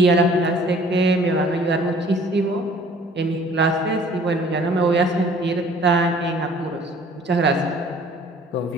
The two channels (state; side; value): normal; both; correlation 0.53